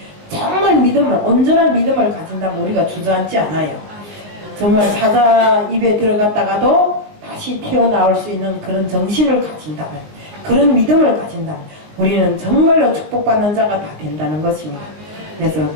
정말 온전한 믿음을 가진다면 우리가 주저앉지 않아요. 정말 사자 입에 들어갔다가도 다시 튀어나올 수 있는 그런 정신을 가진다면, 그런 믿음을 가진다면 우리는 정말로 축복받는 자가 다 된다는 것입니다. 그래서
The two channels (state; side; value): late; left; 19 ms